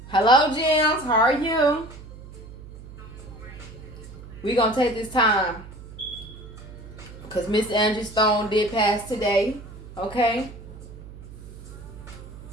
Hello, Gems. How are you? We're going to take this time because Miss Angie Stone did pass today. Okay?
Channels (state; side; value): noise; right; hum, 15 dB below the sound